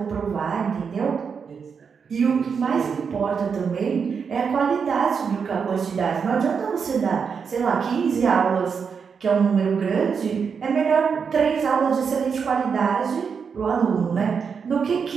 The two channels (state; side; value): quieter; left; 6.2 dB